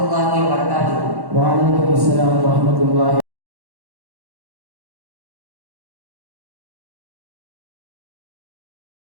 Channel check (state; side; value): late; left; 1.1 ms